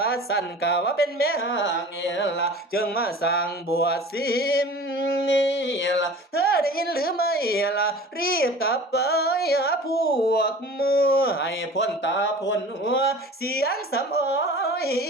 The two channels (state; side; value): normal; both; correlation 0.41